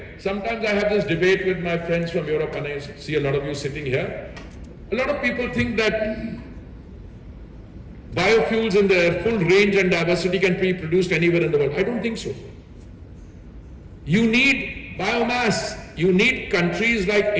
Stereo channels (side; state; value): both; identical; correlation 1.00